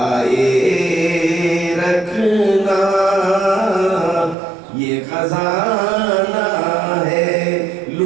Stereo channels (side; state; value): left; drops out; at 4.4 s